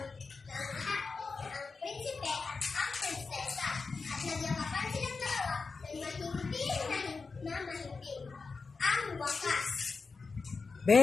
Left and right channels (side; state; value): right; quieter; 4.5 dB